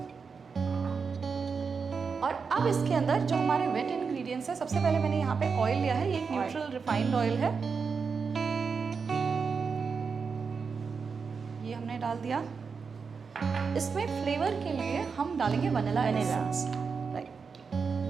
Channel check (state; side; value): quieter; left; 5.4 dB